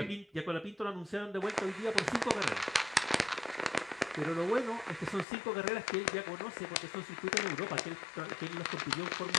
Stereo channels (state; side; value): drops out; right; at 5.2 s